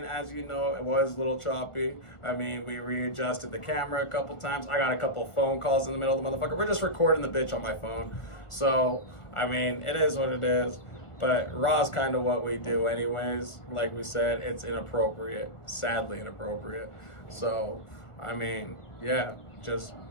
as you know, it was a little choppy. I mean, we readjusted the camera a couple times. I got a couple phone calls in the middle of the motherfucker. We're just recording the bitch on my phone. So I mean, it is what it is. But raw's kind of what we do anyways. Like we said, it's inappropriate. Sadly inappropriate. So, I mean, yeah, just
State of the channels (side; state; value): right; late; 1.4 ms